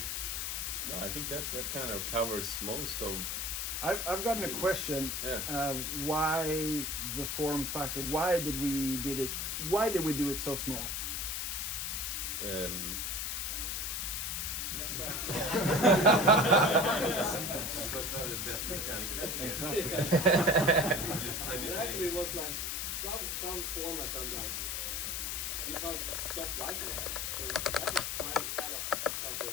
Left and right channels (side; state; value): left; noise; hiss, 2 dB below the sound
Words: No, I think that kind of covers most of. I've gotten a question. Yeah. Why the form factor? Why did we do it so small? Supposed to have the best mechanical Exactly. It actually was like some formats are like you can't stop liking them. So that was kind of